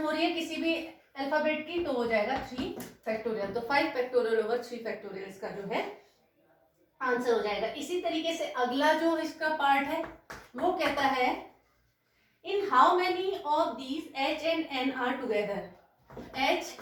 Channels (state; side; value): identical; both; correlation 1.00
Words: रही है किसी भी अल्फाबेट की तो हो जाएगा 3 फैक्टोरियल, तो 5 फैक्टोरियल ओवर 3 फैक्टोरियल इसका जो है आंसर हो जाएगा। इसी तरीके से अगला जो इसका पार्ट है वो कहता है in how many of these H and N are together, H